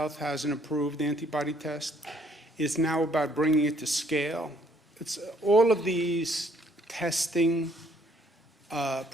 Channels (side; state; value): both; normal; correlation 0.65